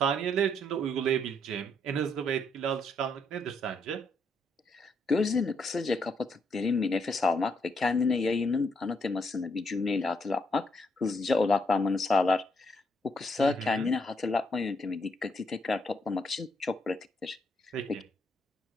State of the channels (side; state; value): both; normal; correlation 0.74